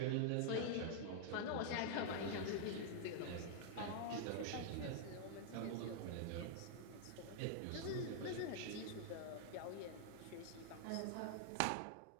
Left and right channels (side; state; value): both; different; correlation -0.01